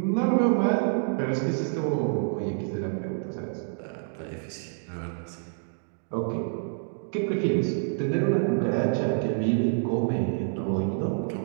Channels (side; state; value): left; silent; digital silence